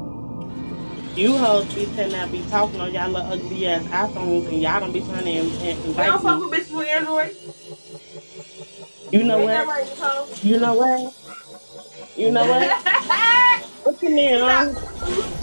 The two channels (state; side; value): inverted; both; correlation -1.00